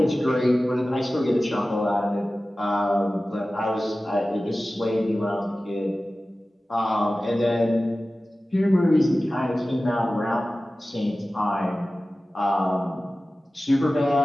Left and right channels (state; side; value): normal; both; correlation 0.96